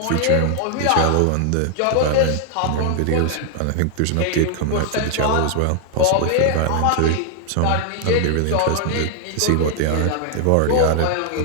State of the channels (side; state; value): both; different; correlation 0.00